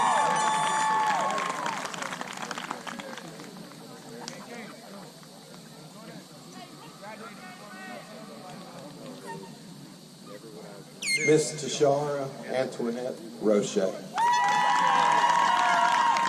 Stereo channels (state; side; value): identical; both; correlation 1.00